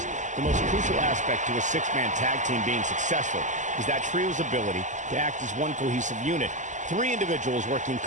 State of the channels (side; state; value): left; late; 0.35 ms